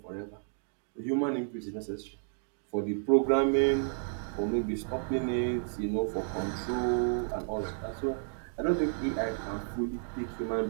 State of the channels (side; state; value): left; silent; digital silence